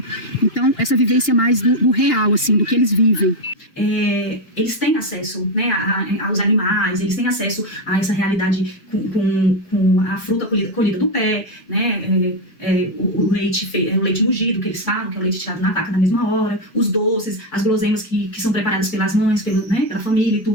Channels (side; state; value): right; late; 2.8 ms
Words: Então, essa vivência mais do real, assim, do que eles vivem. Eles têm acesso, né, aos animais, eles têm acesso a essa realidade com a fruta colhida do pé, né, o leite mugido, que eles falam, que é o leite tirado na vaca na mesma hora, os doces, as guloseimas que são preparadas pelas mães, pela família e